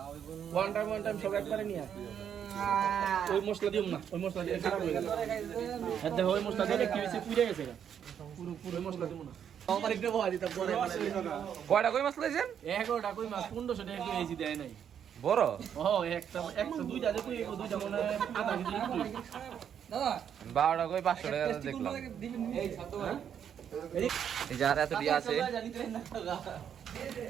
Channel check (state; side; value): quieter; left; 8.6 dB